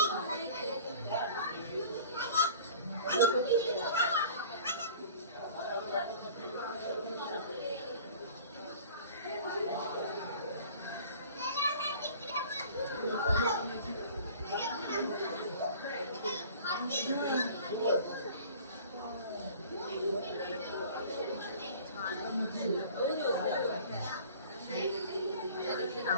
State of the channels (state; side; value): inverted; both; correlation -0.46